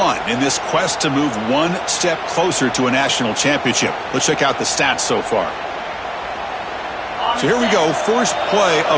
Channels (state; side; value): identical; both; correlation 1.00